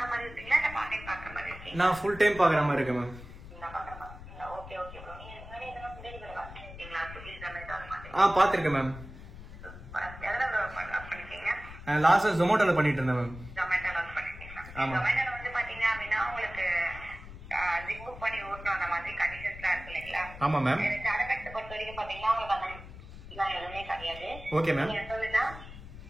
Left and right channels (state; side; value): noise; left; rumble, 14 dB below the sound